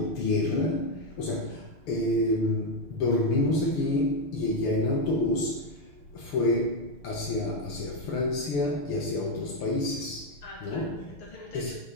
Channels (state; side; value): late; right; 6.8 ms